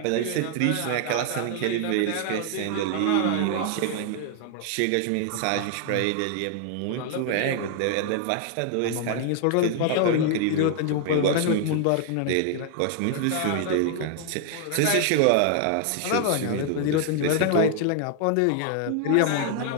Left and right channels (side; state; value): both; different; correlation 0.00